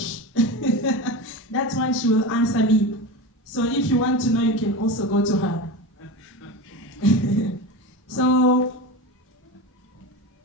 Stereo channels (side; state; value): both; normal; correlation 0.24